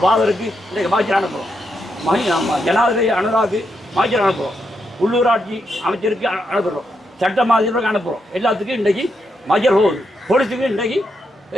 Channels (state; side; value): normal; both; correlation 0.82